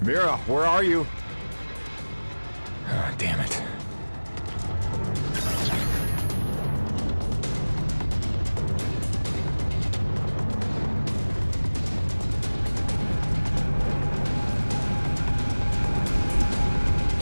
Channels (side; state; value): both; inverted; correlation -1.00